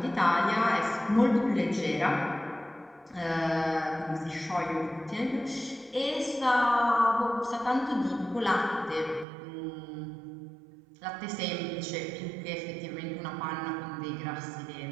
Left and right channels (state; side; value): drops out; left; at 9.2 s